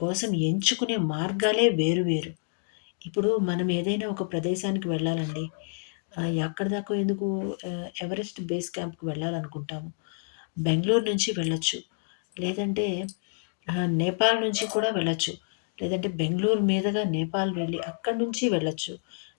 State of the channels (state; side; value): silent; right; digital silence